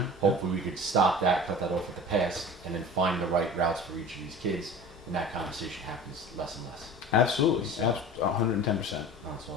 hopefully we could stop that, cut that off at the pass, and then find the right routes for each of these kids, and that conversation happens less and less. Absolutely, So, 110%. That's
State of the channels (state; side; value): normal; both; correlation 0.38